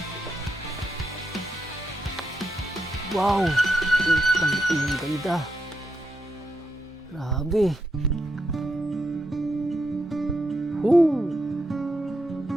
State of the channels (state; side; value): normal; both; correlation 0.83